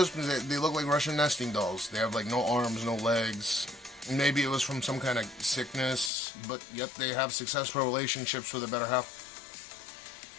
They look like Russian nesting dolls. They have like no arms, no legs. Maybe it was from some kind of sickness, but yet they have successful relationships with a better half.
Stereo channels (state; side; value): drops out; right; at 6.1 s